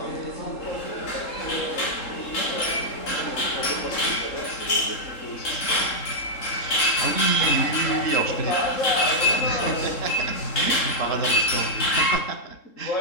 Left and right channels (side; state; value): right; late; 3.7 ms